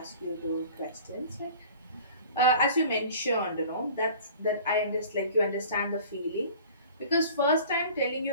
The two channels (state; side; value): inverted; both; correlation -0.45